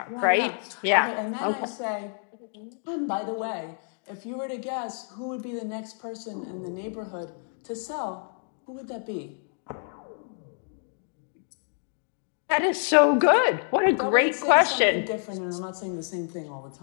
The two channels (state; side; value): silent; right; 59 dB below the other